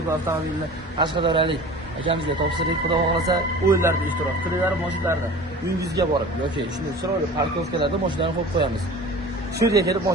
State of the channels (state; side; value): normal; both; correlation 0.40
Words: avtomobilini Qashqadaryolik akamizga topshirdik. Xudo xohlasa o'yinlarda ishtirok qilinglar, mashinalarda uyingizga borib yoki shunday chiroyli parkovkalarda mashinalarni qo'yib qo'yamiz. Shu yerga kelib